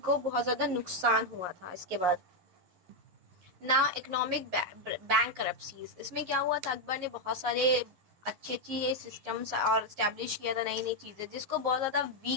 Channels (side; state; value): left; late; 11 ms